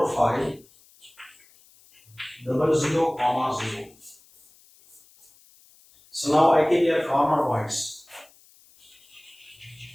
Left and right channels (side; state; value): left; noise; hiss, 28 dB below the sound